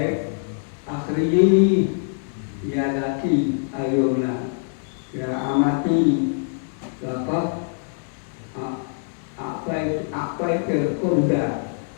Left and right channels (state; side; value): silent; right; digital silence